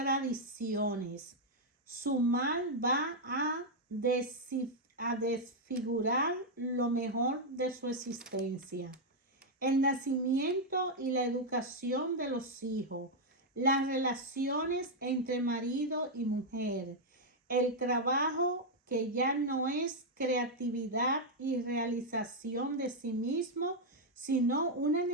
Su mal va a desfigurar lo mejor de su existencia. El nacimiento y la educación de los hijos, las relaciones entre marido y mujer, el trabajo que ya no es creatividad y realización de sí mismo, sino una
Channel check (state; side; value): normal; both; correlation -0.01